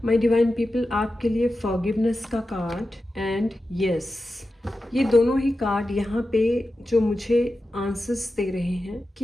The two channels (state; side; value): normal; both; correlation 0.92